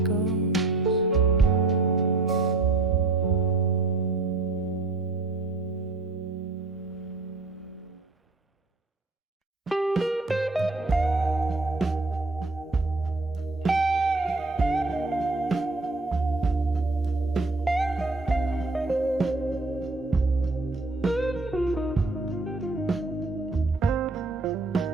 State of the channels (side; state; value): left; quieter; 3.3 dB